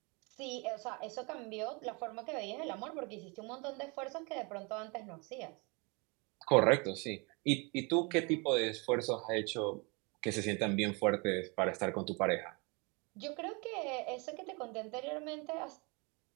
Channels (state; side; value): quieter; left; 29.9 dB